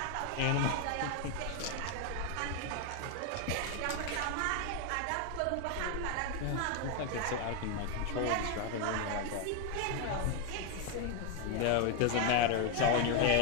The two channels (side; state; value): both; different; correlation 0.01